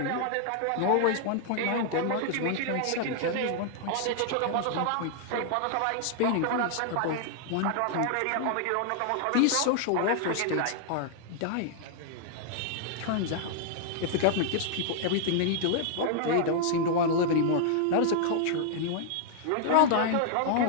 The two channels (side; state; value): both; different; correlation -0.01